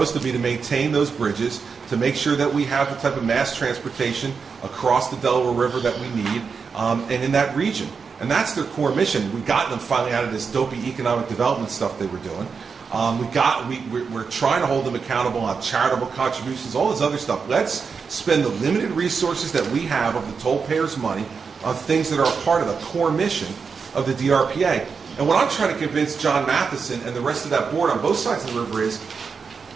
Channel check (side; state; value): left; quieter; 5.5 dB